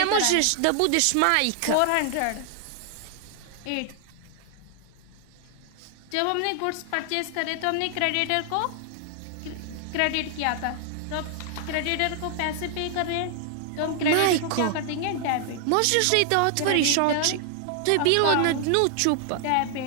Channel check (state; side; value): different; both; correlation 0.00